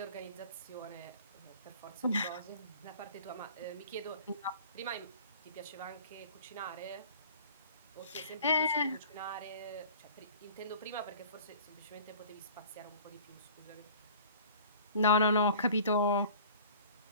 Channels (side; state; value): both; inverted; correlation -0.46